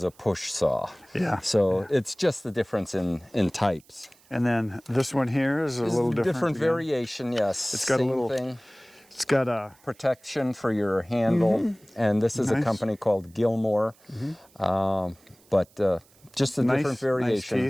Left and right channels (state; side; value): noise; right; hiss, 30 dB below the sound